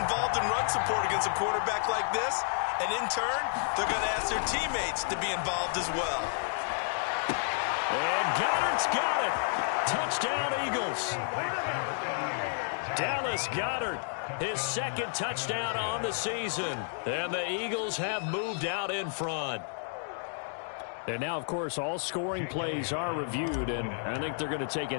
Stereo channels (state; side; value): silent; right; digital silence